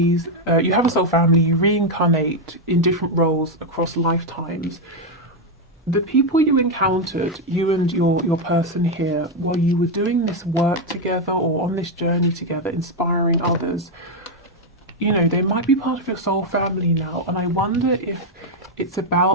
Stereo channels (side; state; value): both; normal; correlation 0.03